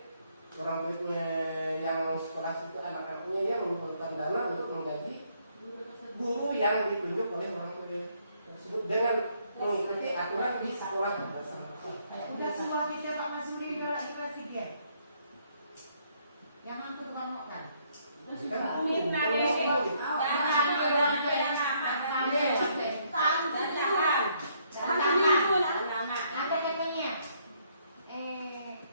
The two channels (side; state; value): both; inverted; correlation -0.69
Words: orang muridnya yang sekolah itu anak-anaknya yang mengumpulkan dana untuk menggaji guru yang ditunjuk oleh orang tua tersebut dengan mengikuti aturan di sekolah bersama. Udah semua kita Pak Masudi nolak di kelas 3. Yang aku tukang makan. Minta deh, Ada katanya.